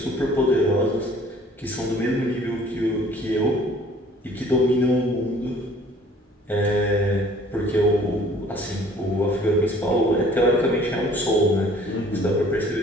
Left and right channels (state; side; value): normal; both; correlation 0.54